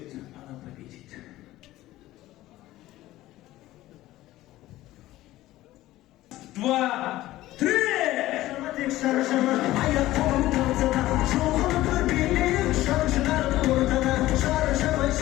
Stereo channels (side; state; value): right; quieter; 16.0 dB